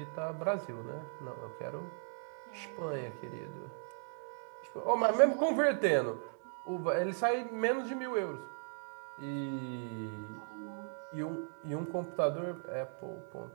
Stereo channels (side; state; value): left; silent; digital silence